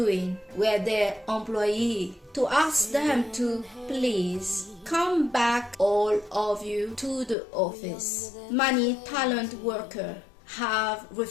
with their employee to ask them to please come back, all of you, to the office. Many talent workers have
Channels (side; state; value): right; drops out; at 7.4 s